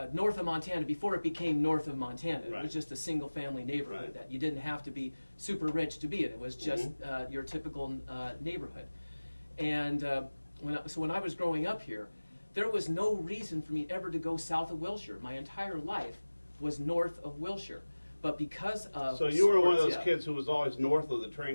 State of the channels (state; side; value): inverted; both; correlation -1.00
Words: north of Montana before it became north of Montana. It was just a single-family neighborhood that you didn't have to be super rich to be in. It was just your typical neighborhood. And when I was growing up here, there was no reason for me ever to go south of Wilshire. My entire life was north of Wilshire. But because of So you were one of those kids who was always north of the